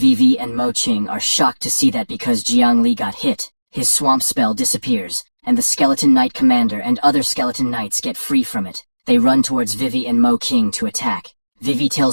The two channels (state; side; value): inverted; both; correlation -1.00